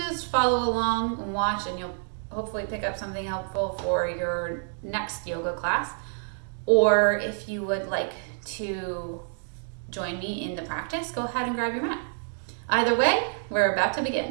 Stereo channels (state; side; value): silent; left; digital silence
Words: follow along and watch, and you'll hopefully pick up something helpful for your next yoga class. Or if you would like to join me in the practice, go ahead and grab your mat. Either way, we're about to